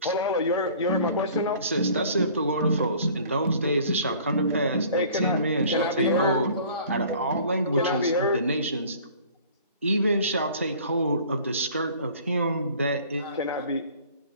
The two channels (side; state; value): both; inverted; correlation -0.50